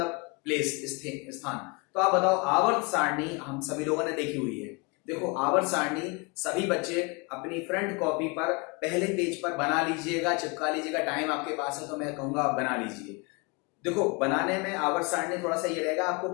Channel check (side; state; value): right; quieter; 29.5 dB